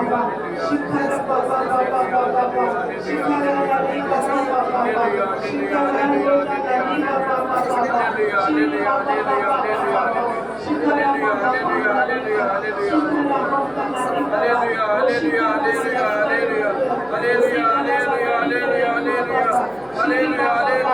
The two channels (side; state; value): right; noise; hum, 28 dB below the sound